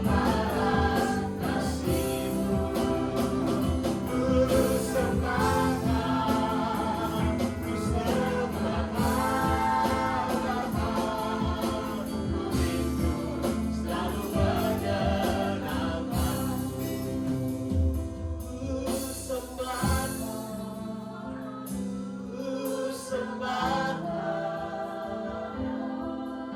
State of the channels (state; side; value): identical; both; correlation 1.00